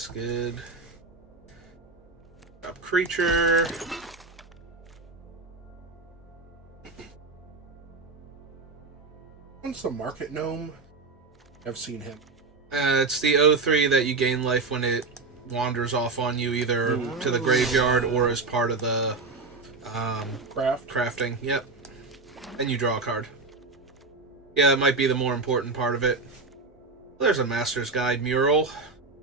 good. Drop creature. What's the Market Gnome? I've seen him. It's the 03 that you gain life when it wanders off on you either to the graveyard or as part of the crafting. Yep. And you draw a card. Yeah, that might be the more important part of it. There's a Master's Guide mural.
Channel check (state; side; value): quieter; left; 3.9 dB